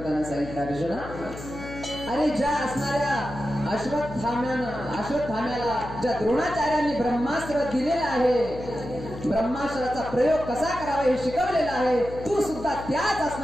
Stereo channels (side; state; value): left; noise; hum, 12 dB below the sound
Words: सांगितलं, अर्जुना, अरे ज्या असणाऱ्या अश्वत्थाम्याला ज्या द्रोणाचार्यांनी ब्रह्मास्त्र दिलेलं आहे, ब्रह्मास्त्राचा प्रयोग कसा करावा हे शिकवलेला आहे, तू सुद्धा त्याच